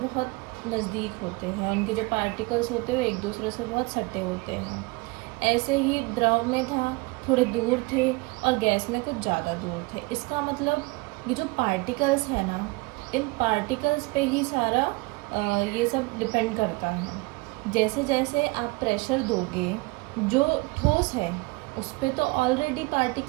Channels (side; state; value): left; quieter; 24.4 dB